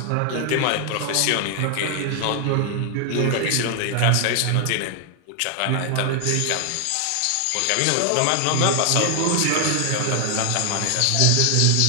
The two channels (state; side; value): different; both; correlation 0.00